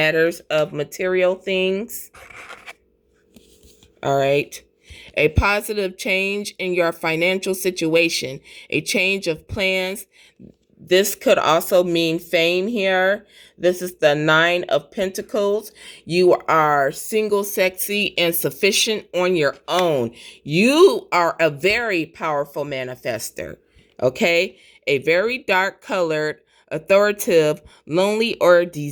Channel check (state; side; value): identical; both; correlation 1.00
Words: of material things. All right. A positive change in your financial situation, a change of plans. This could also mean fame here. This is the 9 of Pentacles. You are single, sexy, and sufficient on your own. You are a very powerful manifester. Okay? A very dark colored, authoritative, lonely, or